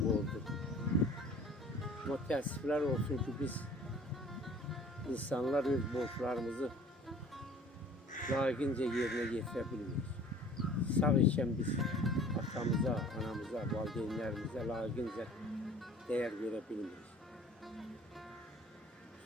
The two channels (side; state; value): both; normal; correlation 0.49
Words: borcudur. Amma təəssüflər olsun ki, biz insanlar öz borçlarımızı layiqincə yerinə yetirə bilmirik. Sağ ikən biz atamıza, anamıza, valideynlərimizə layiqincə dəyər verə bilmirik.